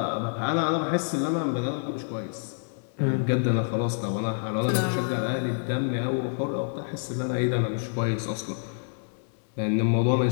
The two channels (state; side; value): silent; right; digital silence